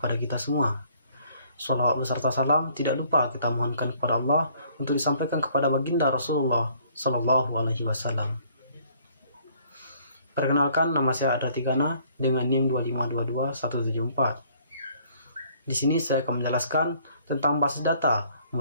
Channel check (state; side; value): inverted; both; correlation -0.61